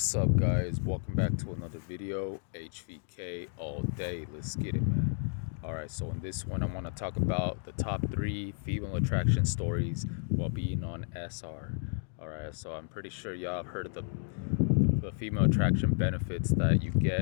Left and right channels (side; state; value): right; silent; digital silence